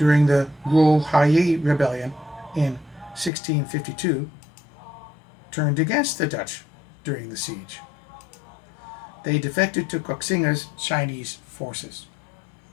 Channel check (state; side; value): drops out; right; at 3.3 s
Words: the Guo-Huayi rebellion in 1652, turned against the Dutch during the siege. They defected to Koxinga's Chinese forces.